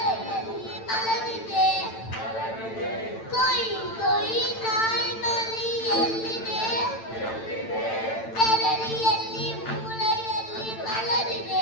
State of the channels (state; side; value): late; right; 8.9 ms